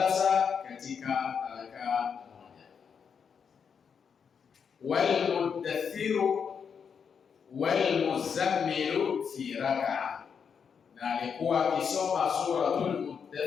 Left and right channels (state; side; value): quieter; right; 6.7 dB